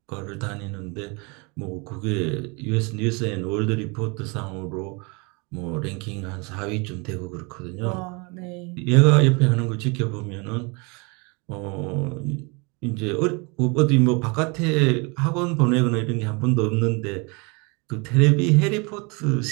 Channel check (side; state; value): left; quieter; 30.0 dB